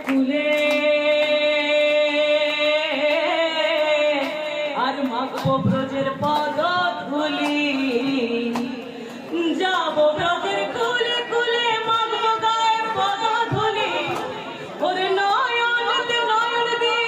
কুলে আর মাখবো ব্রজের পদ ধুলি যাব ব্রজের কুলে কুলে মাখবো গায়ে পদ ধুলি ওরে নয়নতে নয়ন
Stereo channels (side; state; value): both; identical; correlation 1.00